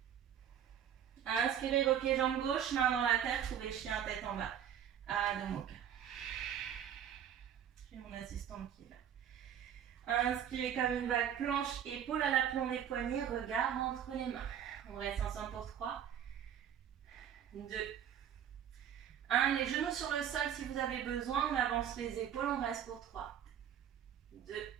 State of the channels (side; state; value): left; quieter; 9.4 dB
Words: Inspirez, repliez jambe gauche, main dans la terre, trouvez chien tête en bas. Adho Mukha. J'ai mon assistante qui est là. Inspirez comme une vague planche, épaule à l'aplomb des poignets, regard entre les mains. On reste ensemble pour 3, 2, 1. Les genoux sur le sol si vous avez besoin, on avance les épaules, on reste pour 3, 2,